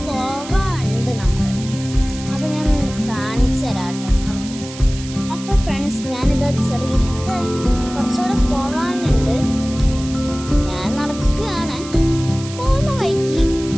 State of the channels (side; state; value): right; noise; hiss, 14 dB below the sound